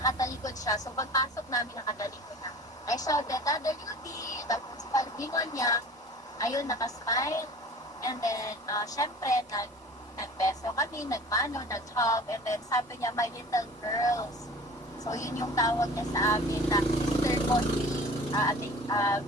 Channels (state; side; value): normal; both; correlation 0.43